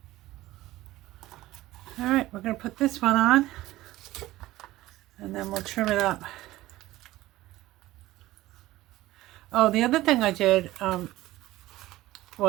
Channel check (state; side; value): quieter; left; 16.8 dB